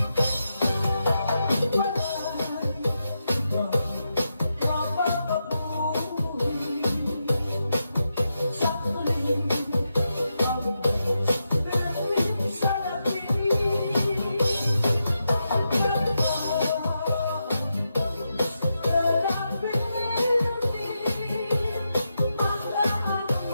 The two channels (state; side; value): inverted; both; correlation -0.86